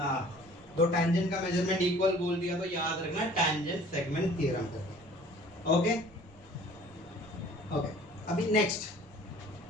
दो टेंजेंट का मेजरमेंट इक्वल बोल दिया तो याद रखना tangent segment theorem. Okay okay अभी नेक्स्ट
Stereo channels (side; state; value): right; noise; rumble, 26 dB below the sound